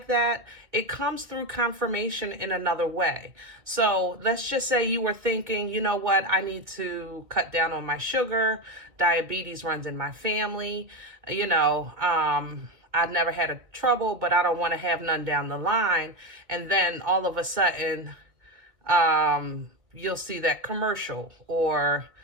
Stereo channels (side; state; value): left; late; 2.1 ms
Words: that, it comes through confirmation in another way. So let's just say you were thinking, you know what, I need to cut down on my sugar. Diabetes runs in my family. You know, I've never had a trouble, but I don't want to have none down the line. And then all of a sudden, you'll see that commercial, or